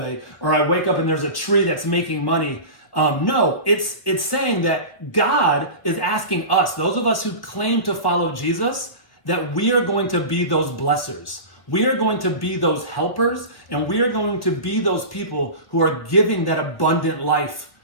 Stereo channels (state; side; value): late; right; 1.3 ms